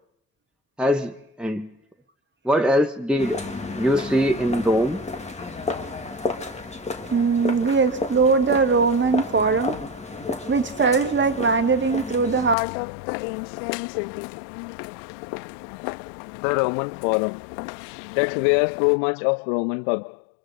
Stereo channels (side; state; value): right; drops out; at 12.6 s